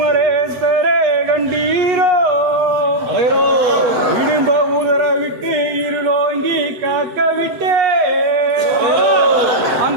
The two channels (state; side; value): late; left; 7.9 ms